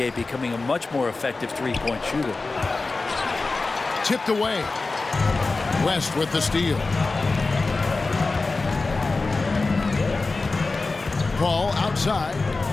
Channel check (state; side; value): quieter; right; 3.6 dB